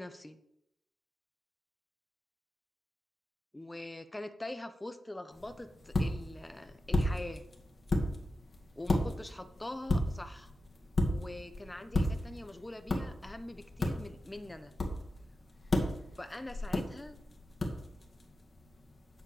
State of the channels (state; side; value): normal; both; correlation 0.92